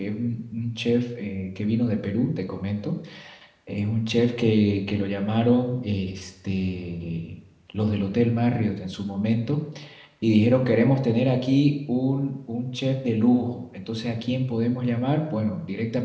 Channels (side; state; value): both; identical; correlation 1.00